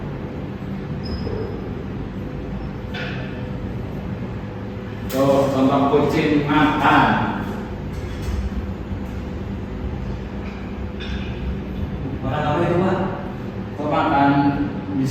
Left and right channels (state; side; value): identical; both; correlation 1.00